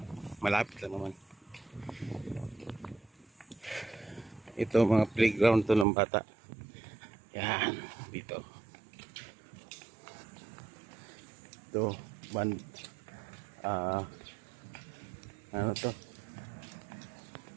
malapit lang naman. Ito mga playground to ng bata. Yan dito. Ito band, ano to,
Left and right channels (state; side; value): drops out; left; at 5.9 s